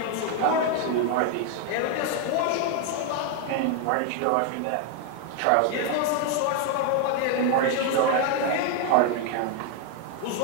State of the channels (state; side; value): different; both; correlation 0.01